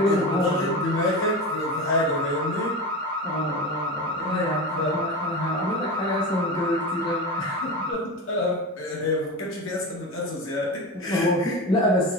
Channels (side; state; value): both; normal; correlation 0.24